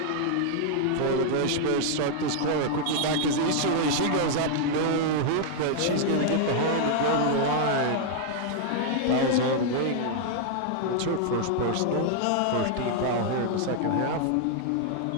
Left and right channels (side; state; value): both; different; correlation 0.00